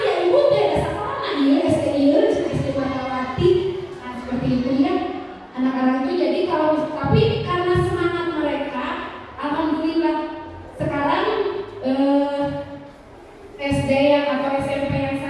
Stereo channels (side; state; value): both; identical; correlation 1.00